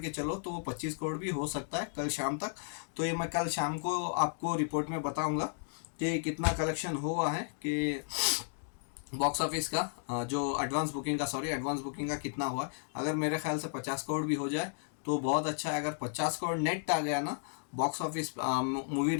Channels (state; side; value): silent; right; digital silence